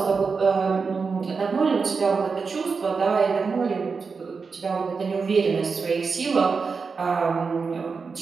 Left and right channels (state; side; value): quieter; left; 5.0 dB